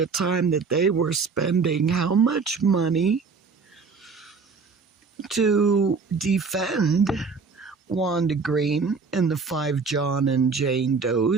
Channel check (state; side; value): quieter; left; 4.9 dB